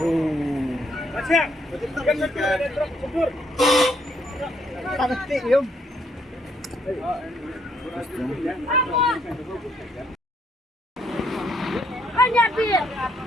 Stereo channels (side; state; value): both; normal; correlation 0.71